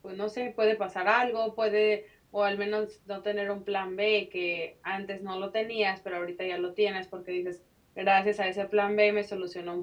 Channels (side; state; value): both; identical; correlation 1.00